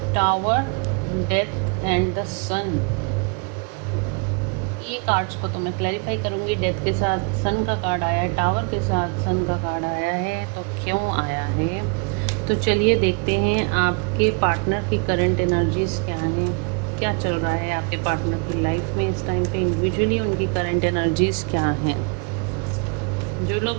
टावर, डेथ एंड द सन। ये कार्ड्स को तो मैं क्लैरिफाई करूँगी। डेथ के साथ सन का कार्ड आया है, टावर के साथ सन का कार्ड आया है, तो क्यों आया है। तो चलिए देखते हैं आपके पार्टनर की करंट एनर्जीज क्या हैं, क्या चल रहा है आपके पार्टनर की लाइफ में इस टाइम पे। इंडिविजुअली उनकी करंट एनर्जीज क्या हैं। जो लोग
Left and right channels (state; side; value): quieter; left; 37.0 dB